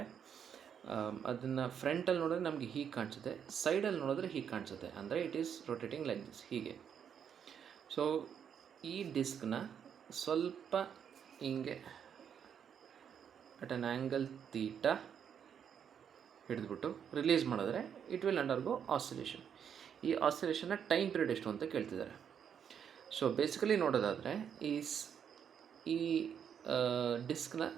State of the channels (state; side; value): quieter; left; 8.0 dB